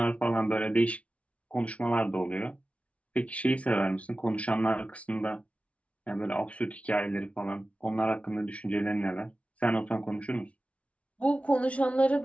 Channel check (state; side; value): late; right; 0.064 ms